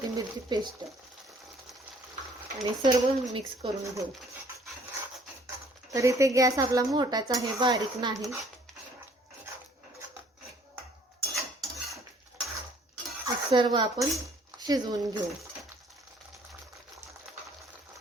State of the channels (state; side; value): normal; both; correlation 0.59